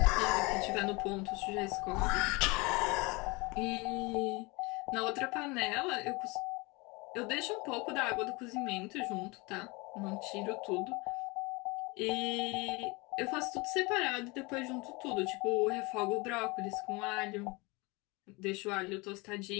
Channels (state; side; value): quieter; right; 25.9 dB